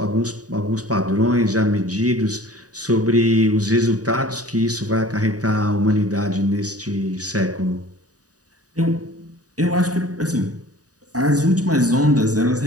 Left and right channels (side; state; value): left; late; 0.67 ms